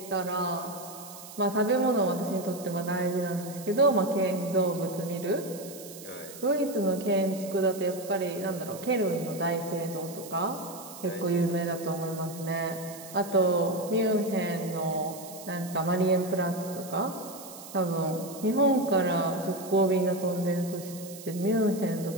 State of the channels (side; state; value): right; noise; hiss, 15 dB below the sound